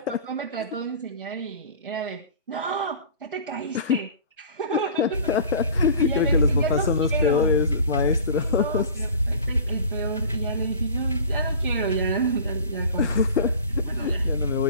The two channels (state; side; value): inverted; both; correlation -0.41